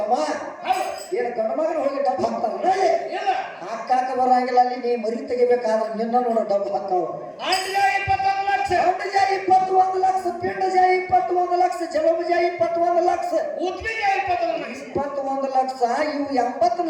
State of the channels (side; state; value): both; identical; correlation 1.00